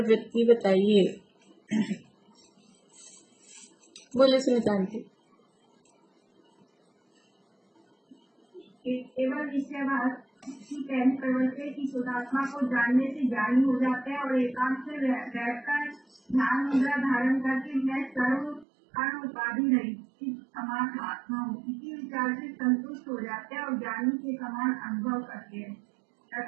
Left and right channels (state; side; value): drops out; left; at 18.7 s